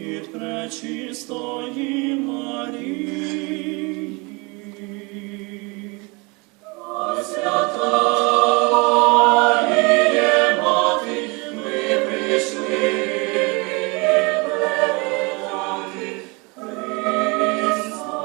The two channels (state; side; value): quieter; left; 28.2 dB